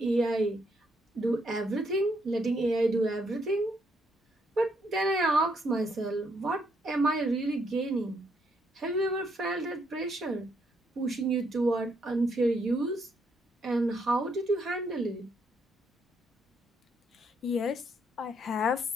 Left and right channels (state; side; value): normal; both; correlation 0.74